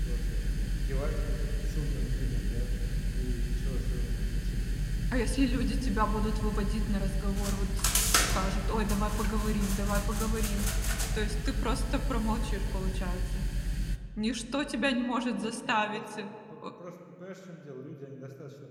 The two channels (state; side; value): identical; both; correlation 1.00